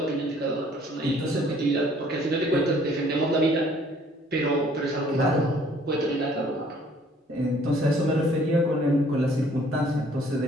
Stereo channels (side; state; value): both; normal; correlation 0.59